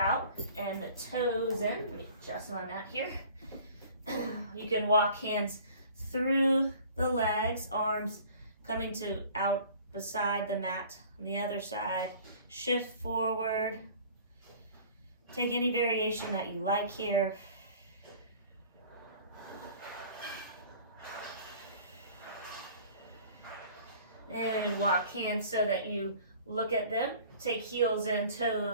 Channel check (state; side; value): inverted; both; correlation -0.48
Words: and the toes in. Let me adjust my mat here. You can walk hands through the legs, arms coming to out beside the mat. On the other side, shift forward. Take any variation that you like here. And walk hands so that you look at them. Take heels in,